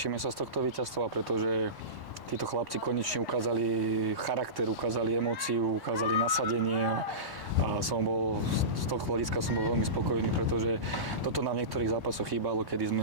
sa z tohto víťazstva, pretože títo chlapci konečne ukázali charakter, ukázali emóciu, ukázali nasadenie a som bol, z toho hľadiska som bol veľmi spokojný, pretože toto nám v niektorých zápasoch chýbalo, kedy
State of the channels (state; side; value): late; left; 1.1 ms